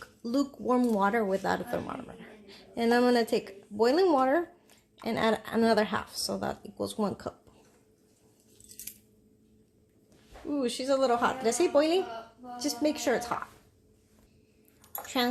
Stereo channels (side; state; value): both; identical; correlation 1.00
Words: lukewarm water without a thermometer. And I'm gonna take boiling water and add another half, so that equals 1 cup. Ooh, she's a little hot. Did I say boiling? Just make sure it's hot.